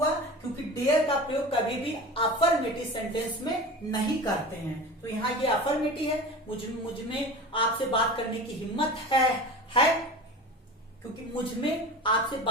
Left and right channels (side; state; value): both; normal; correlation 0.33